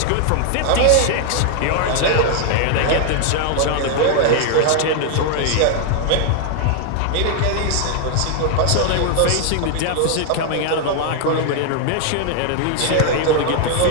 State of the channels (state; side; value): different; both; correlation 0.00